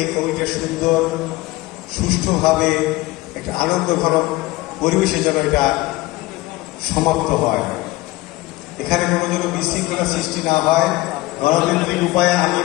কমিটির সুন্দর সুষ্ঠুভাবে একটা আনন্দঘন পরিবেশে যেন এটা সমাপ্ত হয়, এখানে কোনো যেন বিশৃঙ্খলা সৃষ্টি না হয়। গণতান্ত্রিক উপায়ে আমি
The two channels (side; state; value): right; quieter; 19.5 dB